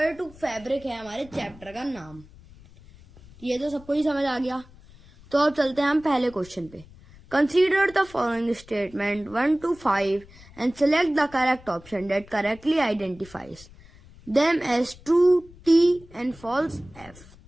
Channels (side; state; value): left; noise; rumble, 23 dB below the sound